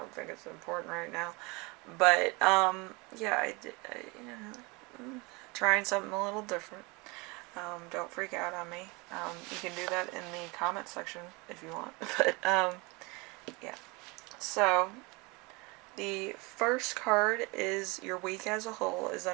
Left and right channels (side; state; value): left; quieter; 26.8 dB